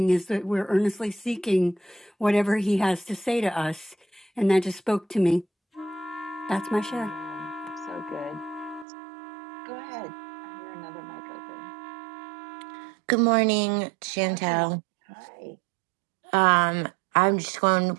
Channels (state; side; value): drops out; left; at 8.8 s